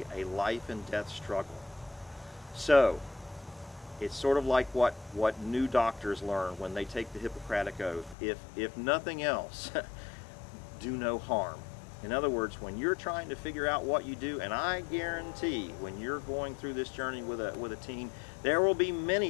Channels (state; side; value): drops out; right; at 8.2 s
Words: a life and death struggle. So, it's sort of like what new doctors learn when they take the Hippocratic Oath. If nothing else, do no harm. In other words, when you're trying to figure out what you do, and I guarantee when you're going through this journey with a teen, there will be